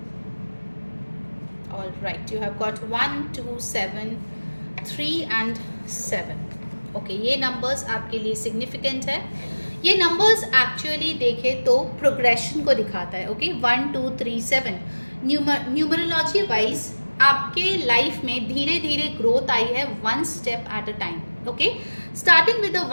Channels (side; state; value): both; inverted; correlation -1.00